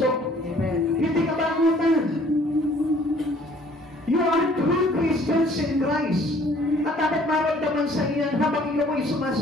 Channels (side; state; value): both; normal; correlation 0.57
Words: Amen. Hindi ka bangutan. You are true Christians in Christ. At dapat maramdaman sa iyan habang ikaw ay